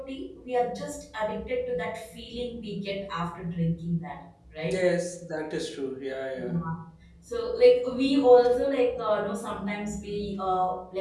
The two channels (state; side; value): identical; both; correlation 1.00